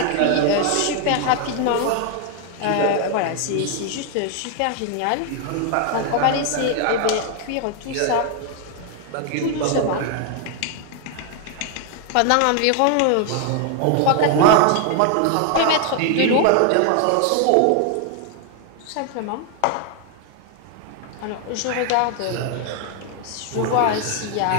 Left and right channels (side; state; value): both; different; correlation 0.00